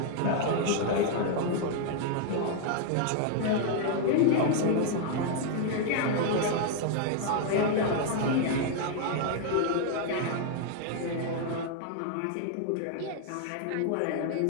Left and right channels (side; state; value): both; different; correlation 0.00